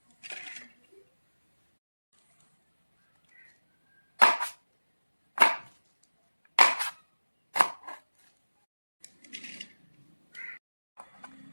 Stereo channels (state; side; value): inverted; both; correlation -1.00